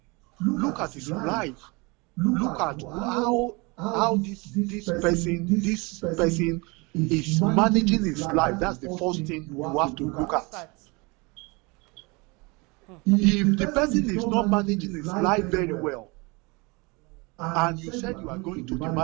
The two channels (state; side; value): quieter; left; 27.3 dB